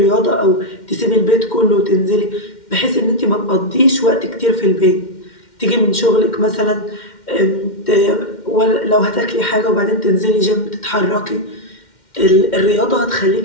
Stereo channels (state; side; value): late; right; 2.1 ms